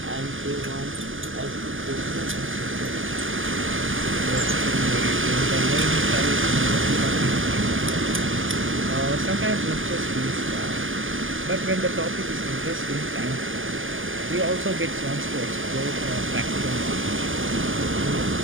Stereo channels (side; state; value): left; late; 0.58 ms